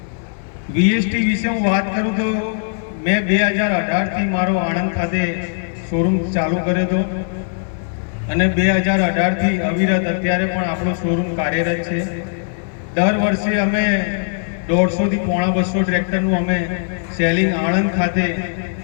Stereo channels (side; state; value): right; silent; 59 dB below the other